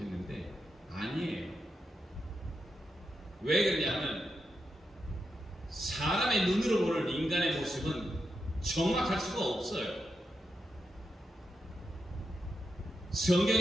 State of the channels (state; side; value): normal; both; correlation 0.85